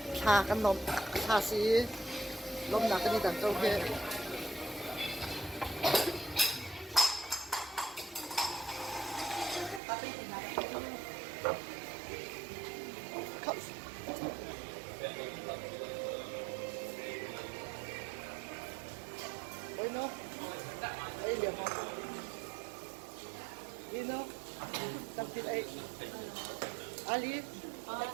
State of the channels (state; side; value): drops out; left; at 9.8 s